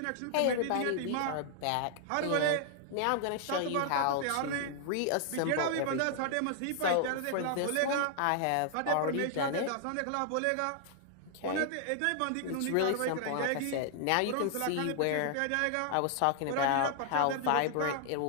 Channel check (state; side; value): different; both; correlation 0.00